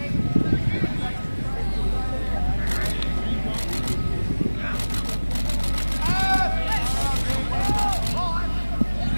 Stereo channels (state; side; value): inverted; both; correlation -1.00